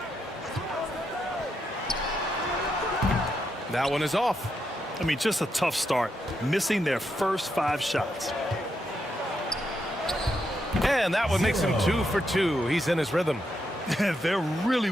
That one is off. I mean, just a tough start, missing their first 5 shots. And that one makes him 2 for 2. He's in his rhythm. They're really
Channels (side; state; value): both; normal; correlation 0.82